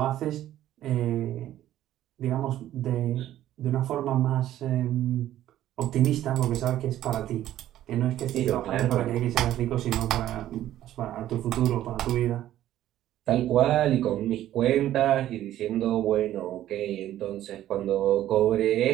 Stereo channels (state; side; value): quieter; left; 12.9 dB